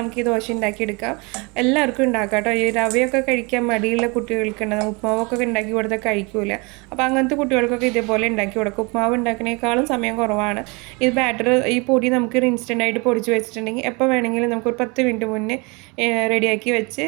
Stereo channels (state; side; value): quieter; left; 28.7 dB